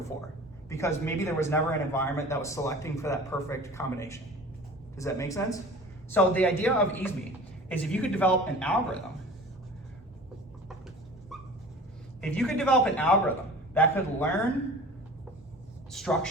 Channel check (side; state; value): both; normal; correlation 0.41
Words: because maybe there was never an environment that was selecting for that perfect combination. Does that make sense? So the idea of EASME is if you could develop an algorithm that could learn